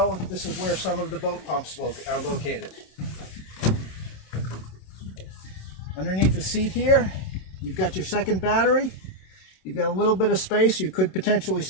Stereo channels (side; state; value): right; late; 27 ms